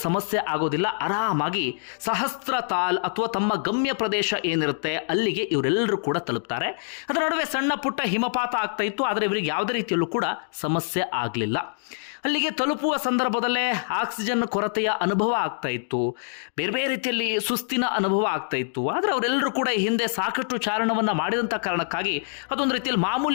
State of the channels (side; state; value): right; silent; digital silence